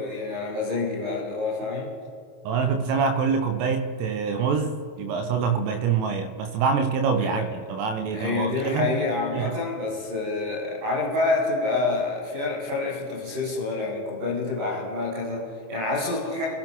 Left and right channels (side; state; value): left; late; 28 ms